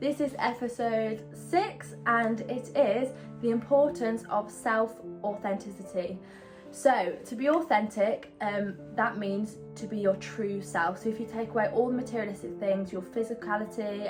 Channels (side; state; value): both; identical; correlation 1.00